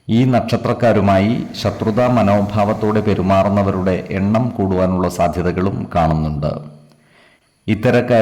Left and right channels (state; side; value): identical; both; correlation 1.00